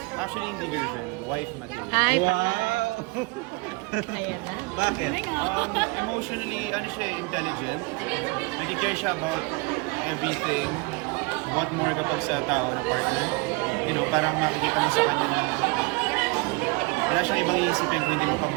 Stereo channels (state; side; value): quieter; left; 26.9 dB